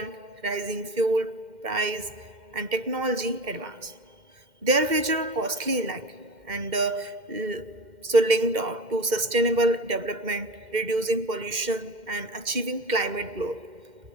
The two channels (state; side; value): late; left; 2.1 ms